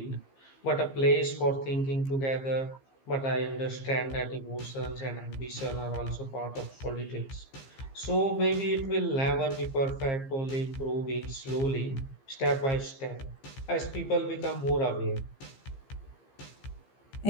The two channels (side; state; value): right; late; 15 ms